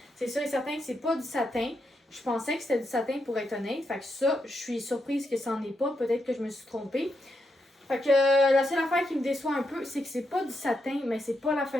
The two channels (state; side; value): normal; both; correlation 0.82